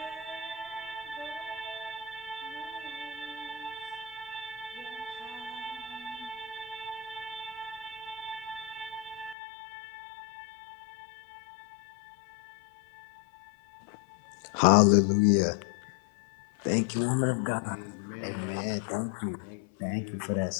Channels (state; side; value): drops out; right; at 9.3 s